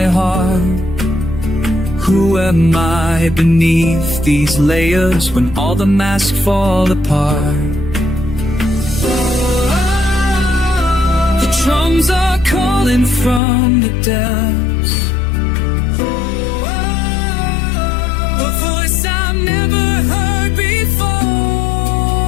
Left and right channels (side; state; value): right; drops out; at 13.4 s